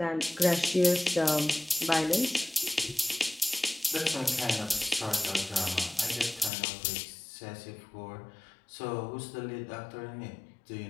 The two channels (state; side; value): drops out; right; at 6.5 s